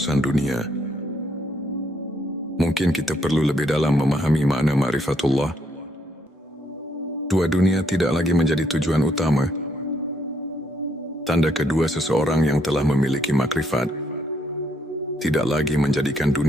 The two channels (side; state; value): both; normal; correlation 0.72